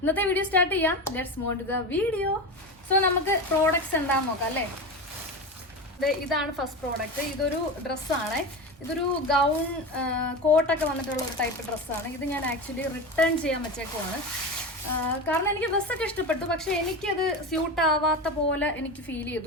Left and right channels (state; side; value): normal; both; correlation 0.23